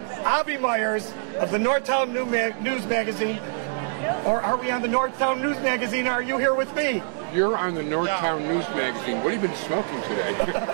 Avi Myers of the Northtown News Magazine. Or are we on the Northtown News Magazine? Are you here with me? You're on the Northtown News Magazine. What have you been smoking today?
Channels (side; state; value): left; silent; digital silence